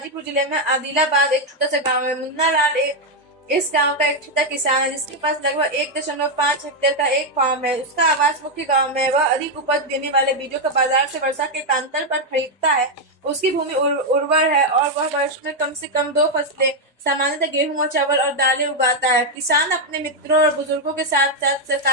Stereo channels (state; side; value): normal; both; correlation 0.02